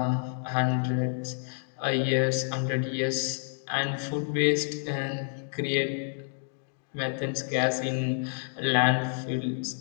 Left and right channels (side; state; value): right; silent; 59 dB below the other